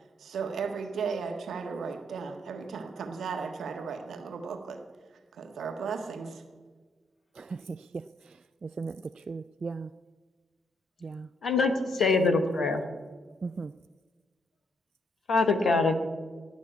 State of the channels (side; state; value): both; normal; correlation 0.73